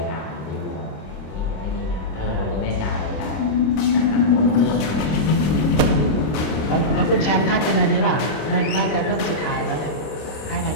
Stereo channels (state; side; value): late; right; 26 ms